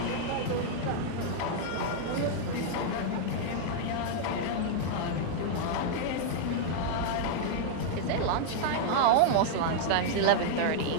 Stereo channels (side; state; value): both; different; correlation -0.01